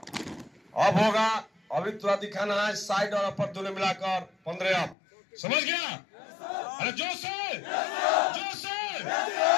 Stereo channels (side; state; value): right; drops out; at 5.0 s